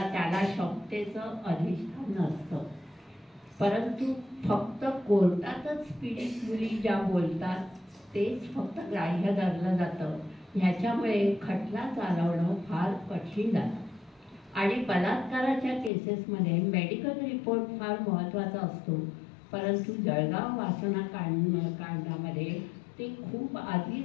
क्षमतेचं अधिष्ठान नसतं. परंतु फक्त कोर्टातच पीडित मुली ज्या बोलतात तेच फक्त ग्राह्य धरलं जातं. ह्याच्यामुळे खटला चालवणं फार कठीण जातं. आणि बलात्काराच्या केसेसमध्ये मेडिकल रिपोर्ट फार महत्त्वाचा असतो, परंतु जळगाव वासना कांडामध्ये ते खूप आधी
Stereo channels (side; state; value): right; drops out; at 15.9 s